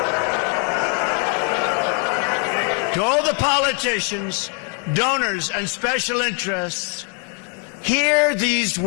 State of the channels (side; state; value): right; quieter; 34.6 dB